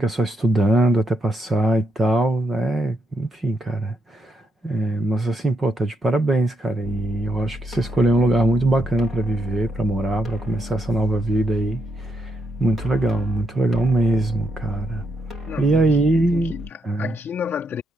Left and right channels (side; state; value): both; normal; correlation 0.80